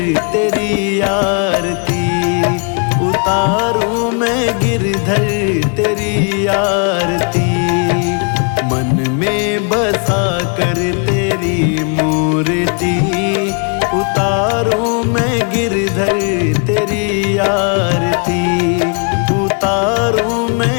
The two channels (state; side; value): quieter; right; 39.2 dB